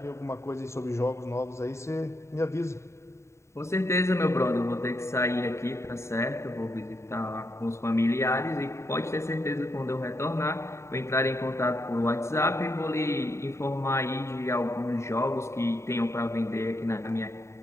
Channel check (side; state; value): right; late; 0.14 ms